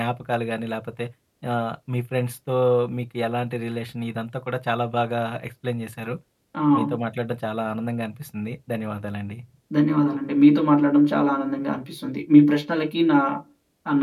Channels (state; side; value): identical; both; correlation 1.00